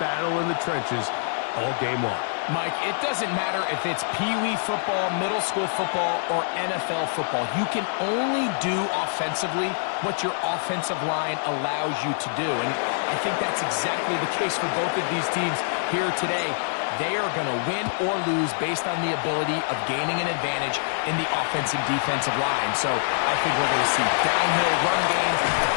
in the trenches all game long. Mike, it doesn't matter if it's Pee-wee football, middle school football, or NFL football. You can only do offensively what your offensive line allows you to do. And I think that's exactly the case for both of these teams here today. They are going to win or lose based on the ability of gaining an advantage in the offensive defensive line. So I think we're going to see downhill run game. I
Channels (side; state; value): right; silent; 62 dB below the other